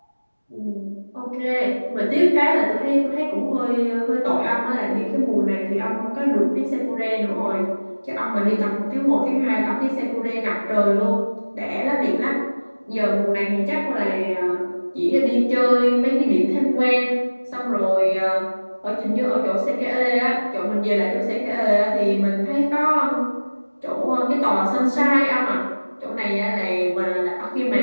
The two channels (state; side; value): inverted; both; correlation -1.00